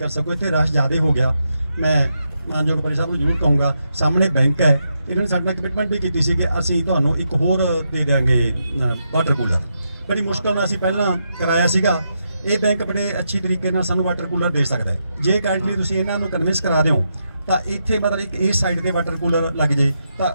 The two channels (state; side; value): inverted; both; correlation -0.83